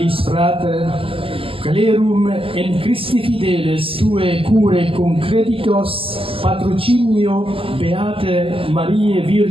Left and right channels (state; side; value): late; left; 0.26 ms